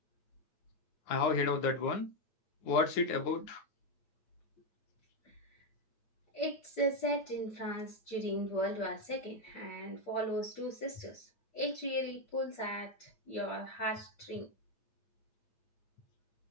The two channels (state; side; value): late; right; 9.5 ms